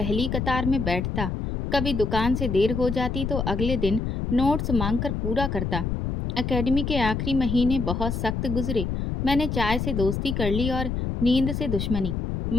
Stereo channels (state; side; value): noise; left; rumble, 2 dB below the sound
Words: कतार में बैठता। कभी दुकान से देर हो जाती तो अगले दिन नोट्स मांगकर पूरा करता। एकेडमी के आखिरी महीने बहुत सख्त गुजरे। मैंने चाय से दोस्ती कर ली और नींद से दुश्मनी।